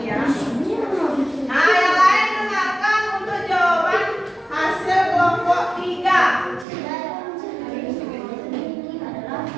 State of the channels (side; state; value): left; drops out; at 6.7 s